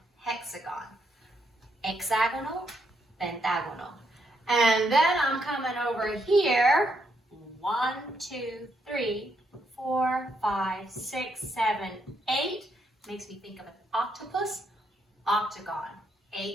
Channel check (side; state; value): both; normal; correlation 0.77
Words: hexagon. Hexagonal, pentagonal. And then I'm coming over here. 1, 2, 3, 4, 5, 6, 7, 8. Makes me think of an octopus. Octagon.